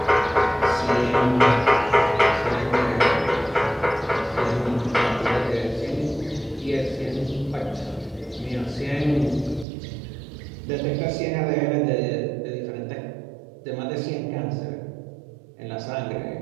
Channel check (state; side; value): drops out; left; at 9.7 s